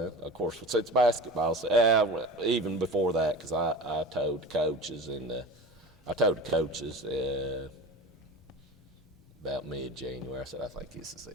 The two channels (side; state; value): both; normal; correlation 0.34